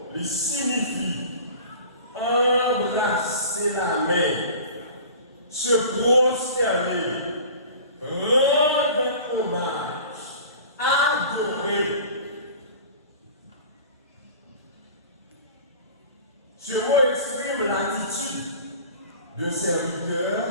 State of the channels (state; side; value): inverted; both; correlation -0.41